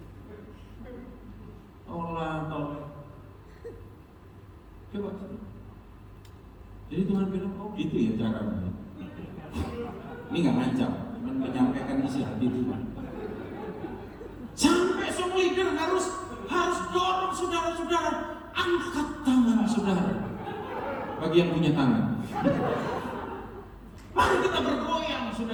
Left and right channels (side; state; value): both; identical; correlation 1.00